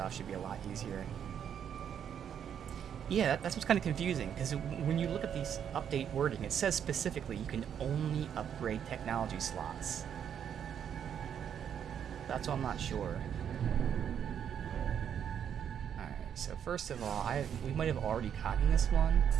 should be a lot easier. Yeah, that's what's kind of confusing, because when you look at these update wording, it says specifically you can only upgrade technology slots. That's why I'm not sure. Alright, so first of all, we might have already gotten this one.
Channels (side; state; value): left; quieter; 8.6 dB